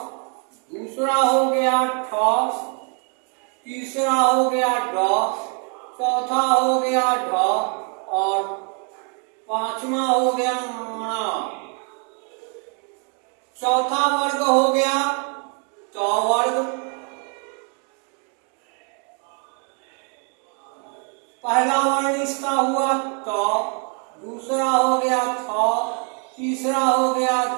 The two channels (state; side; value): quieter; left; 39.0 dB